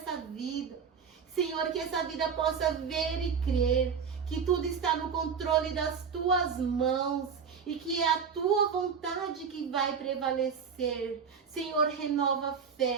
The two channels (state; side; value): quieter; left; 6.4 dB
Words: vida. Senhor, que essa vida possa ver e crer que tudo está no controle das tuas mãos e que é a tua vontade que vai prevalecer. Senhor, renova a